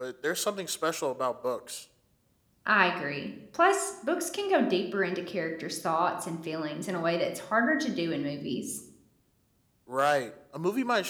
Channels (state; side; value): identical; both; correlation 1.00